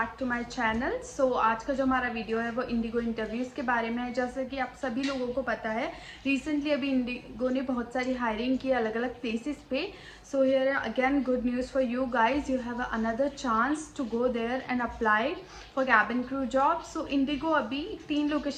to my channel. आज का जो हमारा वीडियो है वो इंडिगो इंटरव्यूज़ के बारे में है। जैसे कि आप सभी लोगों को पता है, रिसेंटली अभी इंडिगो ने बहुत सारी हायरिंग की अलग अलग प्लेसेस पे। So here again good news for you guys, you have another chance to go there and apply for cabin crew job. So IndiGo अभी 3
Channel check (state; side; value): identical; both; correlation 1.00